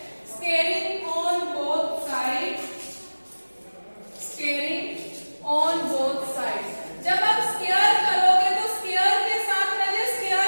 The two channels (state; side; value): inverted; both; correlation -1.00